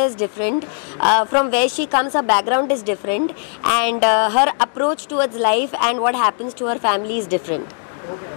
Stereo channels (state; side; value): silent; right; 56 dB below the other